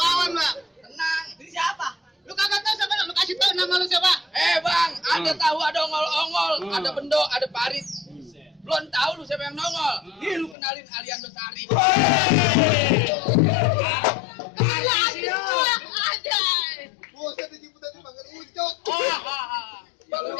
bang. Tenang. Ini siapa? Lu kagak tahu siapa? Lu kasih tahu nama lu siapa? Bang, ada tahu ada ongol-ongol, ada bendo, ada parit. Belum tahu lu siapa yang nongol. Nih lu kenalin Aliando Sari. Aja. Buset dijemput tadi panggil ucok. Bang lu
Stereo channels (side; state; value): right; drops out; at 10.6 s